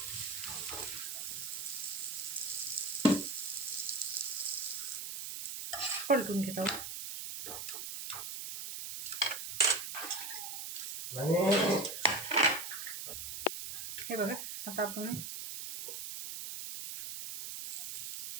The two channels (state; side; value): noise; right; hiss, 5 dB below the sound